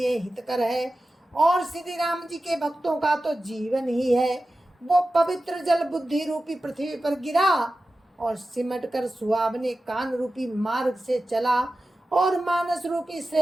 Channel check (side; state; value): both; normal; correlation 0.94